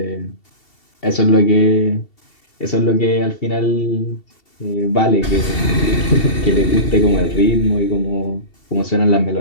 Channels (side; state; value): right; late; 2.7 ms